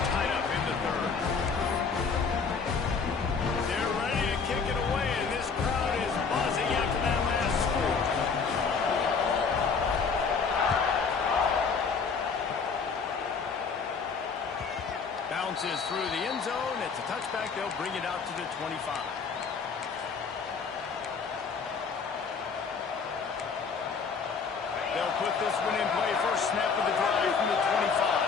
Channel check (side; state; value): right; quieter; 5.4 dB